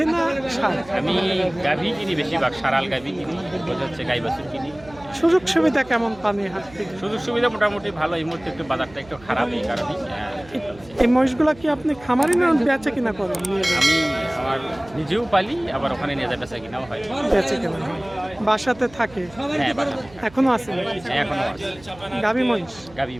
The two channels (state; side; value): noise; right; hum, 22 dB below the sound